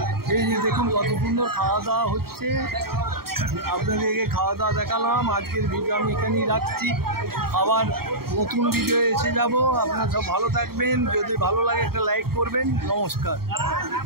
এই যে দেখুন কত সুন্দর খাওয়া দাওয়া হচ্ছে। আপনাদেরকে খাওয়া দাওয়া দেখালাম। আজকের ভিডিও আমি এখানেই রাখছি, আবার নতুন ভিডিও এসে যাব। আপনারা সব ভালো থাকবেন, যদি ভালো লাগে একটা লাইক করবেন। নমস্কার।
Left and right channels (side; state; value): left; late; 0.94 ms